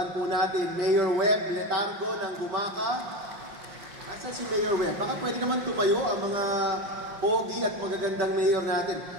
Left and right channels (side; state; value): left; late; 5.6 ms